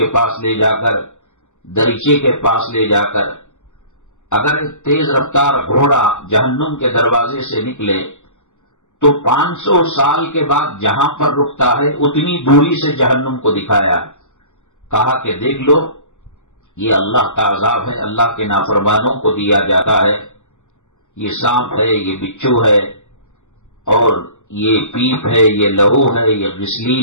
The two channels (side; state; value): right; late; 0.84 ms